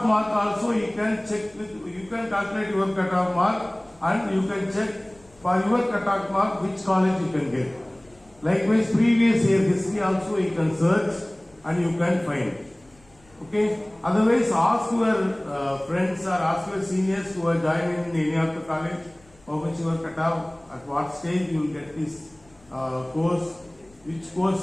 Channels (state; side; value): noise; left; rumble, 30 dB below the sound